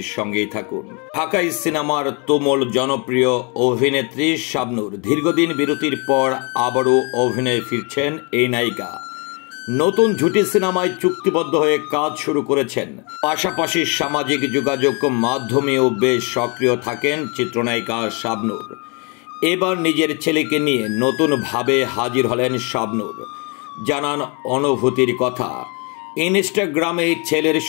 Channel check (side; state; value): right; quieter; 32.6 dB